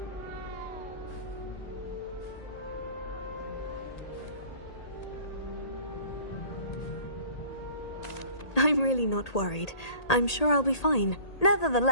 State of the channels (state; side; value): late; right; 1.8 ms